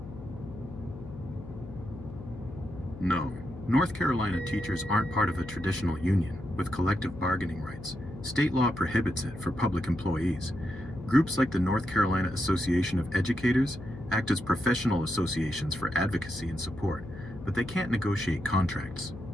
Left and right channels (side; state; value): left; noise; hum, 13 dB below the sound